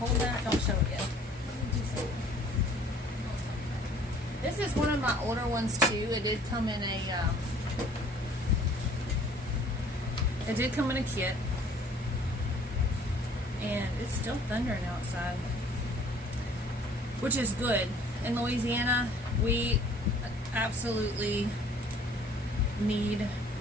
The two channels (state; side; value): normal; both; correlation 0.54